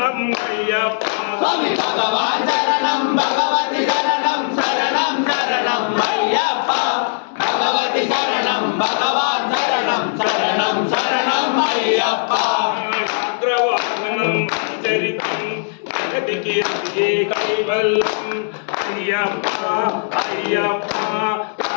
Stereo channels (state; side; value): silent; right; digital silence